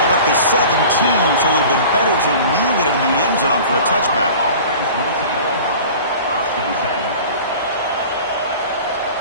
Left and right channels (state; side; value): inverted; both; correlation -0.41